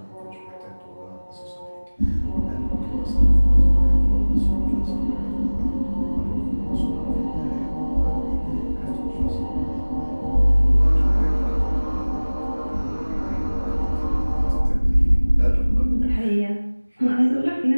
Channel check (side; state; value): both; inverted; correlation -1.00